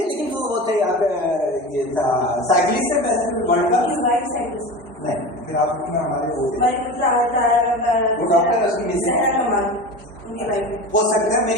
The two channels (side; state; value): both; normal; correlation 0.30